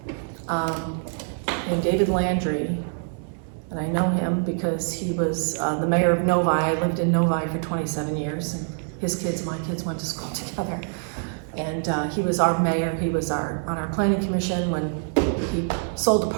named David Landry. And I know him because he was the mayor of Novi. I lived in Novi for 27 years. And my kids went to school together. And he was our mayor. He was on our planning commission when he sold the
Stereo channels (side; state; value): left; silent; 61 dB below the other